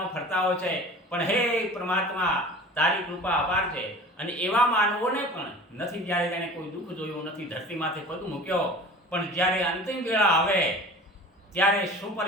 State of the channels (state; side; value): normal; both; correlation 0.40